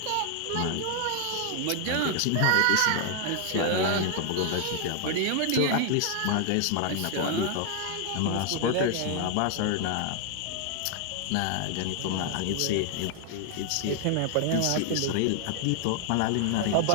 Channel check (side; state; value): both; different; correlation 0.00